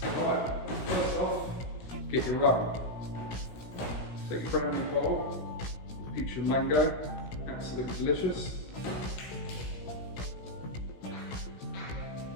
Alright, first off, get your rum. Take your brand new bowl, peach and mango, absolutely delicious.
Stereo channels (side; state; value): right; late; 16 ms